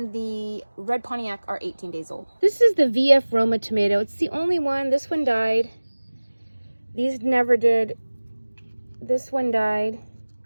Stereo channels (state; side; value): inverted; both; correlation -1.00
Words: the red Pontiac are 18 days old. This is the VF Roma tomato. It's the only one. This one died. These never did. This one died.